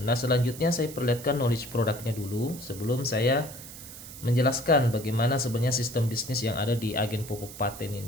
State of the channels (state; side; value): noise; right; hiss, 14 dB below the sound